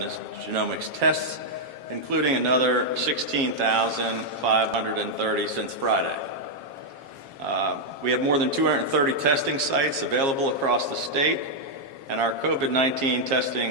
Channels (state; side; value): late; left; 7.4 ms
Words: tests, including another 16,530 since Friday. We have more than 230 testing sites available across the state, and our COVID-19